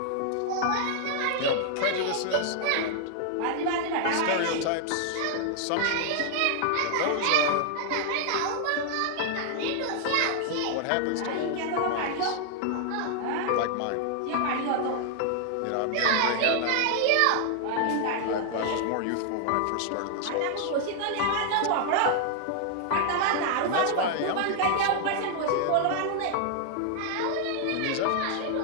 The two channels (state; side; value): different; both; correlation 0.00